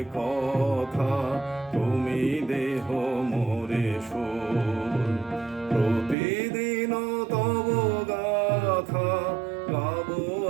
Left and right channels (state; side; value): drops out; left; at 6.2 s